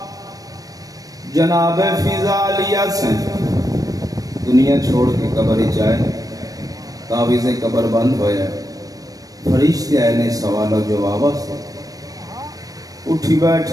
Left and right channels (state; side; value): late; left; 0.18 ms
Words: جناب فضا علیہ سے دنیا چھوڑ کے قبر ہی جائے. تعویذیں قبر بند ہویا، فرشتے آئے نے سوال و جواب سے. اٹھی